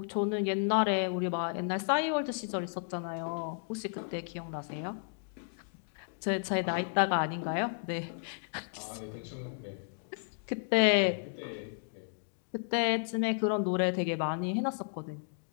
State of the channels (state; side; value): silent; right; digital silence